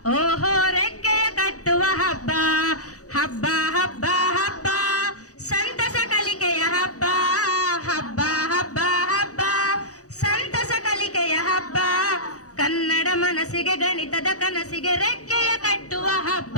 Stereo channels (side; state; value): right; late; 0.66 ms